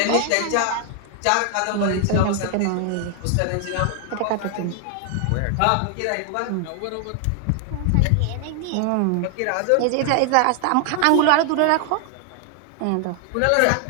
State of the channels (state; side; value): different; both; correlation 0.00